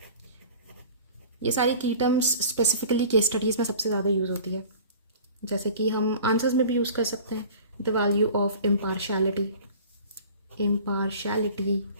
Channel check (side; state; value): both; inverted; correlation -0.43